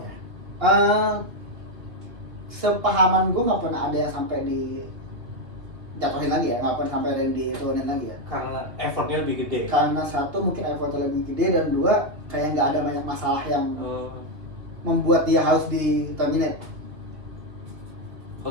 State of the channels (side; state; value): left; late; 2.6 ms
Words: Sepahaman gue nggak pernah ada yang sampai di jatuhin lagi ya, nggak pernah sampai ada yang diturunin lagi ya. Karena effortnya lebih gede. Karena satu mungkin effortnya lebih gede, dan dua kayak nggak ada banyak masalah yang membuat dia harus di terminate.